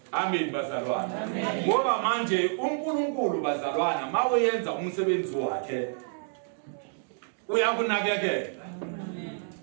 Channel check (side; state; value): left; silent; digital silence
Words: amen bazalwane ngoba manje uNkulunkulu bazalwane mawenza umsebenzi wakhe uyakunakekela